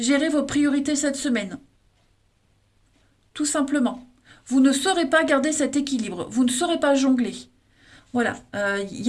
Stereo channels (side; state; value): both; identical; correlation 1.00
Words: vos priorités cette semaine, tout simplement. Vous ne saurez pas garder cet équilibre, vous ne saurez pas jongler. Voilà, il